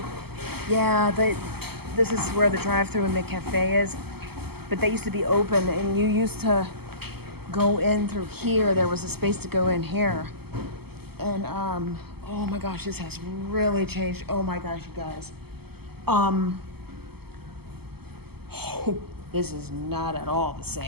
Yeah, this is where the drive-thru and the cafe is. But they used to be open, and you used to go in through here. There was a space to go in here. And, oh my gosh, this has really changed. Oh my gosh, you guys. Oh, this is not at all the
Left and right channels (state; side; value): late; left; 0.96 ms